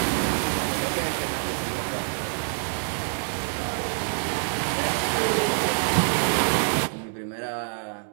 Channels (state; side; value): silent; left; digital silence